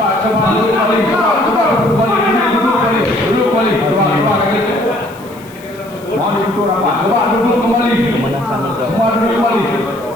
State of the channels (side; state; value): left; noise; hiss, 24 dB below the sound